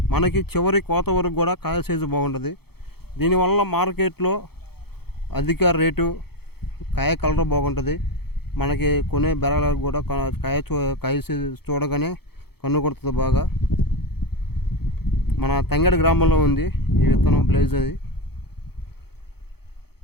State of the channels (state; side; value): late; right; 0.96 ms